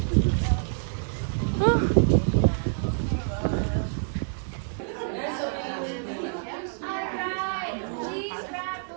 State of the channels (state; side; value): silent; left; digital silence